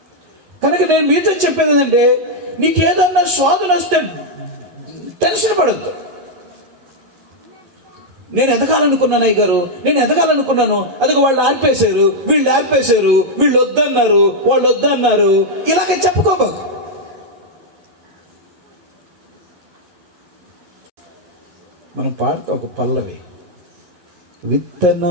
కనుక నేను మీతో చెప్పేది ఏంటంటే, నీకేదన్నా శోధన వస్తే టెన్షన్ పడద్దు. నేను ఎదగాలనుకున్నాను అయ్యగారు, నేను ఎదగాలనుకున్నాను, అదిగో వాళ్ళు ఆర్పేశారు, వీళ్ళు ఆర్పేశారు, వీళ్ళు వద్దన్నారు, వాళ్ళు వద్దన్నారు, ఇలాగ చెప్పుకోబాకు. మనం పాడతా ఒక పల్లవి,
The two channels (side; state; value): left; late; 11 ms